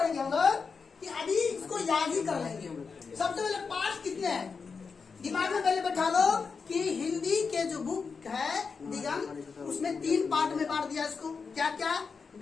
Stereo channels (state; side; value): quieter; right; 5.2 dB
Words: हम लोग कि अभी इसको याद ही कर लेंगे। सबसे पहले पाठ कितने हैं दिमाग में पहले बैठा लो कि हिंदी के जो बुक है दिगंत, उसमें 3 पार्ट में बांट दिया इसको। क्या क्या?